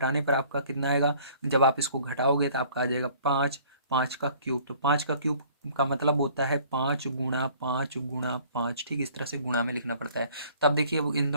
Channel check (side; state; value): both; inverted; correlation -0.55